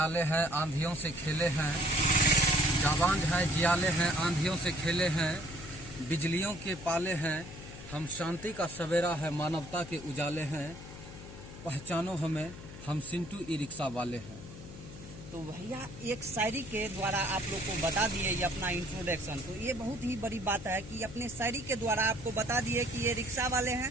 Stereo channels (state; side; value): noise; left; hum, 14 dB below the sound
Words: हैं आंधियों से खेले हैं, जाबाज है जियाले हैं आंधियों से खेले हैं, बिजलियों के पाले हैं, हम शांति का सवेरा है मानवता के उजाले हैं, पहचानो हमें हम सिंटू ई रिक्शा वाले हैं। तो भैया एक शायरी के द्वारा आप लोग को बता दिए ये अपना इंट्रोडक्शन, तो ये बहुत ही बड़ी बात है कि अपने शायरी के द्वारा आपको बता दिए कि ये रिक्शा वाले हैं